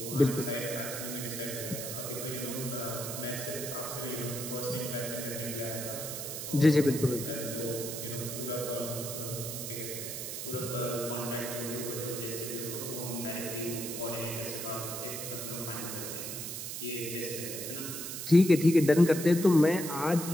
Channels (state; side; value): noise; right; hiss, 6 dB below the sound